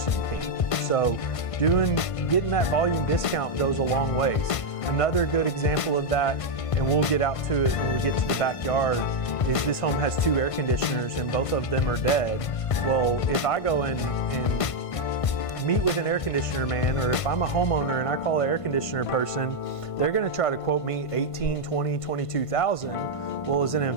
can. So getting that volume discount goes a long ways. Another good example of that, and we'll get out to it when we get to the backyard, is this home has 2 air conditioners and both of them are dead. Well, if I go in and meet with an air conditioner man, or if I'm a homeowner and I call an air conditioner person, they're gonna try to quote me $18,000, $20,000, $22,000. Well, as an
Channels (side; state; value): right; late; 1.5 ms